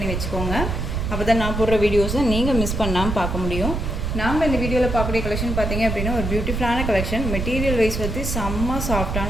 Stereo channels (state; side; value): noise; right; rumble, 3 dB below the sound